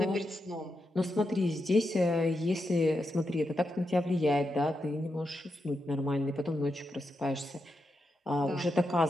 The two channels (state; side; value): normal; both; correlation 0.86